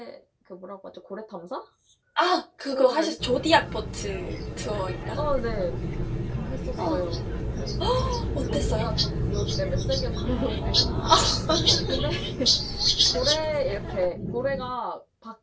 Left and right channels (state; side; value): identical; both; correlation 1.00